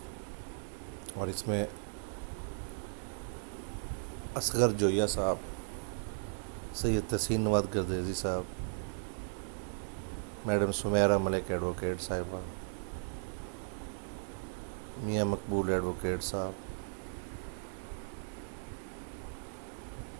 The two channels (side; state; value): left; silent; digital silence